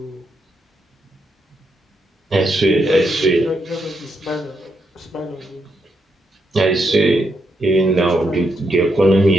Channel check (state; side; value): normal; both; correlation 0.80